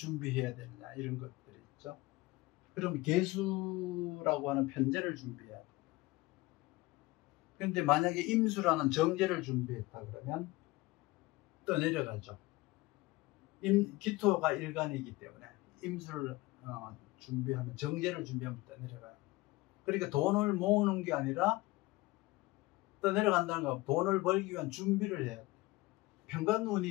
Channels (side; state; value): right; quieter; 20.8 dB